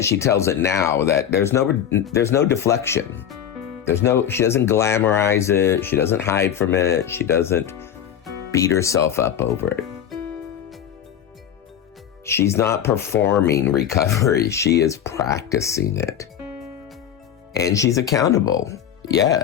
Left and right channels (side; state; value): right; quieter; 9.3 dB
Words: she tells it now, that there's no deflection. She doesn't glamorize it. She doesn't hide from it. She doesn't beat herself up over it. She's not performing recovery. She is practicing it. And she's accountable,